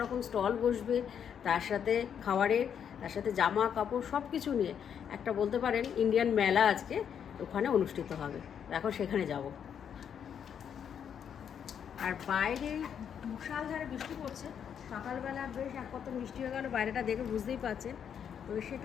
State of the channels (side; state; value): right; quieter; 8.2 dB